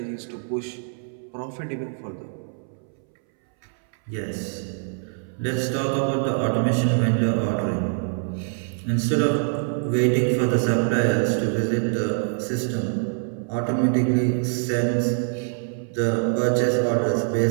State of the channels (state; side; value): silent; left; 62 dB below the other